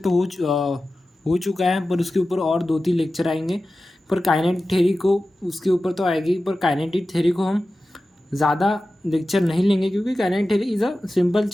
हो चुका है, पर उसके ऊपर और 2-3 लेक्चर आएंगे। पर काइनेटिक थ्योरी को उसके ऊपर तो आएगी, पर काइनेटिक थ्योरी को हम ज़्यादा लेक्चर नहीं लेंगे, क्योंकि kinetic theory is a simple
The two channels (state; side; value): normal; both; correlation 0.94